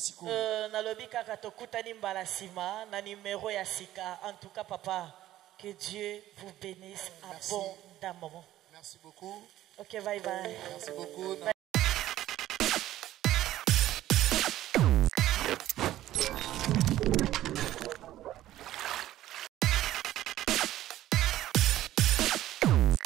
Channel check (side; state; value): left; quieter; 13.9 dB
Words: Na lobi kaka tokutani mbala sima na numéro ya sika. En tout cas papa, que Dieu vous bénisse abondamment. Merci beaucoup. OK, bye bye. Merci beaucoup.